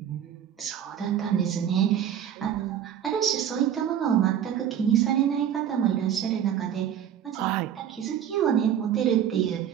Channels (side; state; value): left; quieter; 9.6 dB